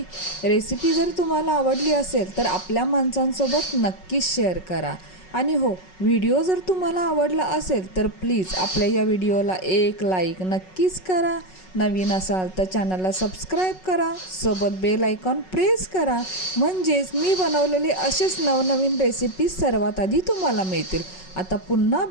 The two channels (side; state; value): right; late; 5.4 ms